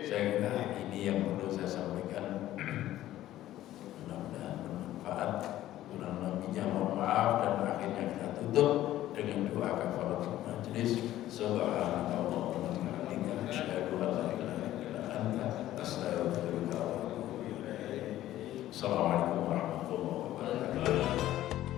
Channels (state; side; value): quieter; right; 13.9 dB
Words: Saya kira ini yang perlu saya sampaikan. Mudah-mudahan bermanfaat. Kurang lebihnya mohon maaf, dan akhirnya kita tutup dengan doa kafaratul majelis.